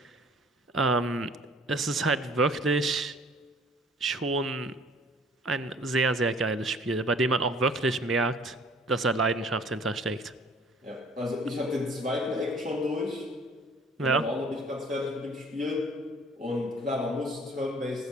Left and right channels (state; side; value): normal; both; correlation 0.53